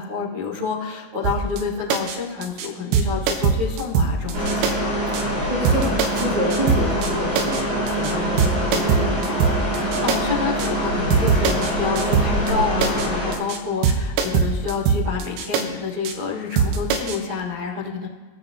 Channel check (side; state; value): left; late; 22 ms